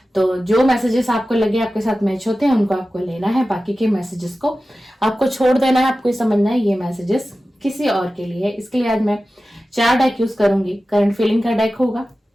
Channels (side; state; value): both; normal; correlation 0.95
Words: तो जो मैसेजेस आपको लगे आपके साथ मैच होते हैं उनको आपको लेना है, बाकी के मैसेजेस को आपको छोड़ देना है। आपको समझना है ये मैसेजेस किसी और के लिए है। इसके लिए आज मैं 4 डेक यूज करूंगी। करंट फीलिंग का डेक होगा,